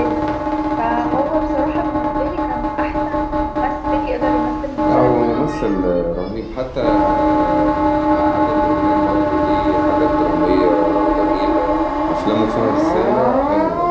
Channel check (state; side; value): identical; both; correlation 1.00